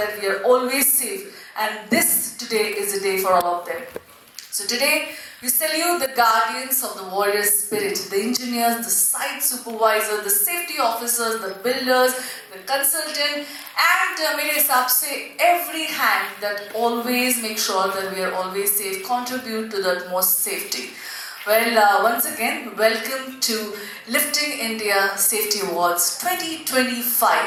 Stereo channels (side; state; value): both; identical; correlation 1.00